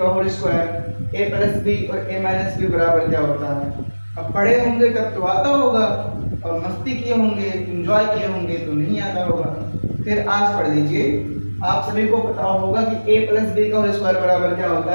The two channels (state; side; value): inverted; both; correlation -1.00